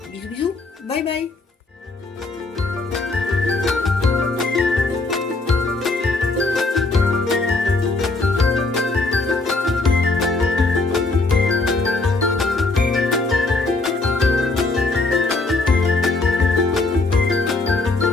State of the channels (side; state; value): right; quieter; 3.4 dB